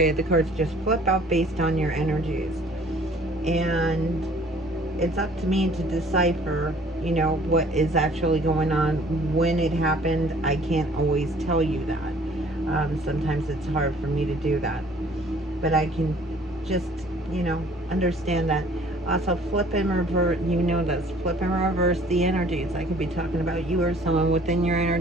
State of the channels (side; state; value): both; normal; correlation 0.55